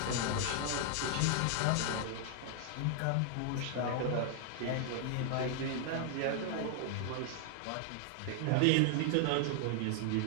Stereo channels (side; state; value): both; different; correlation 0.00